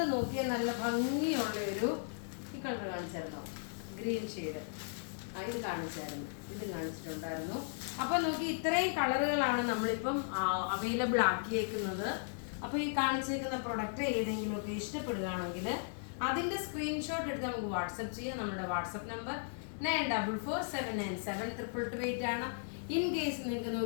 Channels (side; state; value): right; silent; digital silence